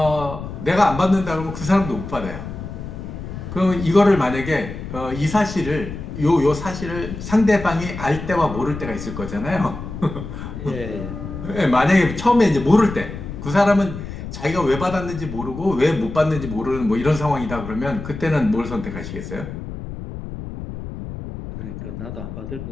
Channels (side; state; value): left; noise; rumble, 9 dB below the sound